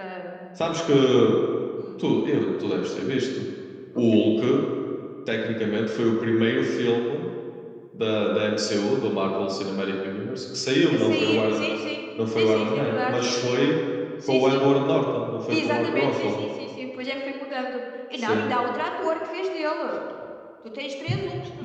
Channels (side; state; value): both; identical; correlation 1.00